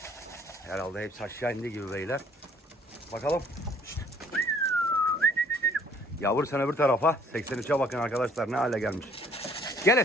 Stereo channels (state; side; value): normal; both; correlation 0.59